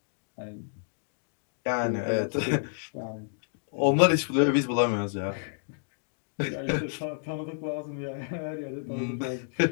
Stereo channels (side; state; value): right; silent; digital silence